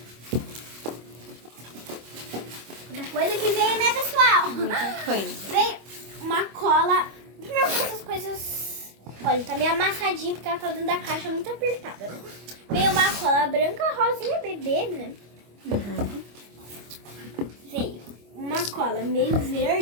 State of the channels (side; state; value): left; late; 25 ms